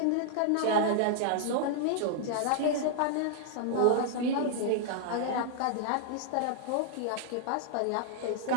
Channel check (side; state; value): both; different; correlation -0.01